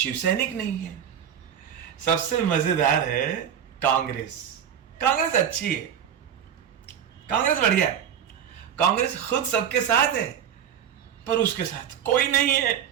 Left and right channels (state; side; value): quieter; left; 8.9 dB